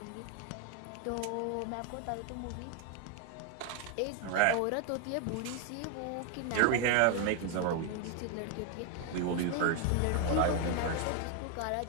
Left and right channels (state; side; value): different; both; correlation 0.01